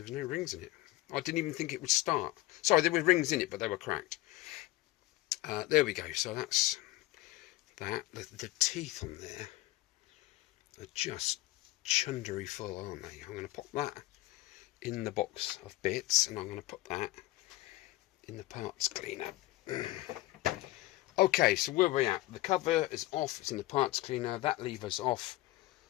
was no rings in it. I didn't even think it would start. Sorry, there were rings in it, but they were cracked. There we go. So that's that. The teeth on there are just chundery full, aren't they? I'm going to pop that in the box of bits, and I'm going to put that in the parts cleaner. Okay, so where are we at? The cover is off. It's in the parts cleaner. That lever's off.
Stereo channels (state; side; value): quieter; right; 17.6 dB